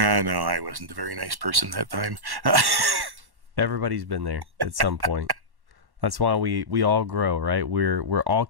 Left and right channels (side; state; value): left; late; 1.1 ms